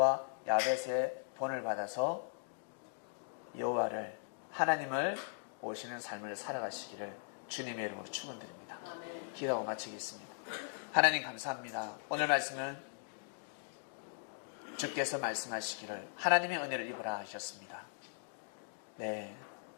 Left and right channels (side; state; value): right; silent; digital silence